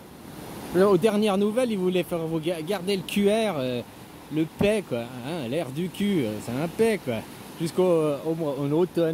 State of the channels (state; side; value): identical; both; correlation 1.00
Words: aux dernières nouvelles, ils voulaient faire vous garder le QR, le paix, quoi. Hein, l'air du cul, c'est un paix, quoi. Jusqu'au en